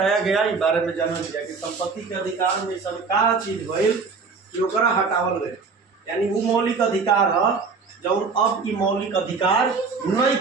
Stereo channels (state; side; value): quieter; left; 4.7 dB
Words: गया इस बारे में जानल गया कि संपत्ति के अधिकार में सब का चीज भइल कि ओकरा हटावल गए, यानी वो मौलिक अधिकार है जौन अब ई मौलिक अधिकार नहीं